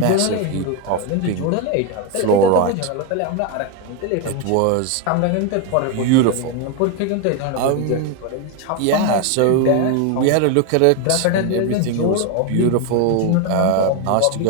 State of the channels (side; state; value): both; different; correlation 0.01